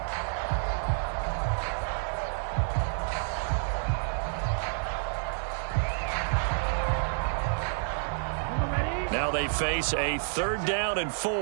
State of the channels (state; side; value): silent; left; 58 dB below the other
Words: Now they face a 3rd down and